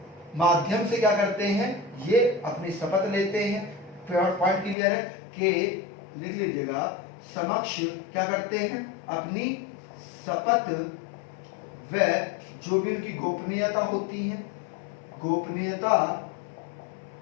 माध्यम से क्या करते हैं, ये अपनी शपथ लेते हैं। पॉइंट क्लियर है कि लिख लीजिएगा, समक्ष क्या करते हैं, अपनी शपथ व जो भी उनकी गोपनीयता होती है, गोपनीयता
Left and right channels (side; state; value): right; drops out; at 4.8 s